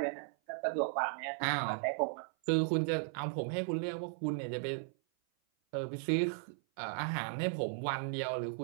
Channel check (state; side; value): silent; left; 54 dB below the other